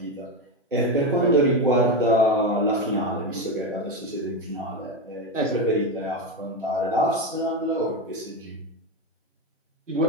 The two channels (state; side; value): normal; both; correlation 0.14